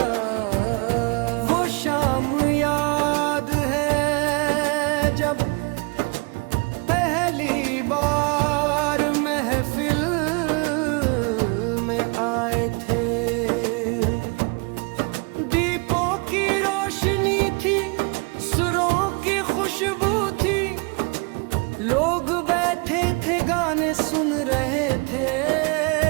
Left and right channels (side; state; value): left; quieter; 31.2 dB